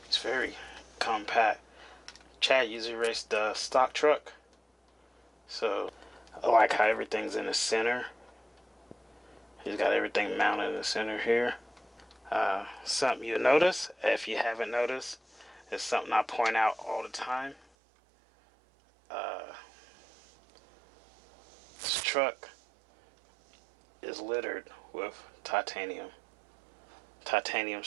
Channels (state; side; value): drops out; left; at 17.6 s